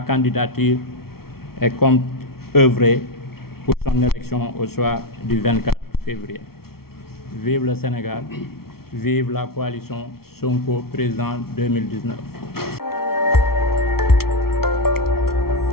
et compte œuvrer pour son élection au soir du 24 février. Vive le Sénégal, vive la coalition Sonko Président 2019.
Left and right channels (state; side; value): late; right; 0.94 ms